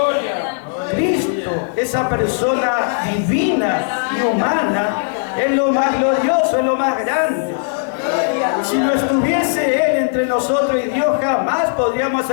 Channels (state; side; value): silent; right; 68 dB below the other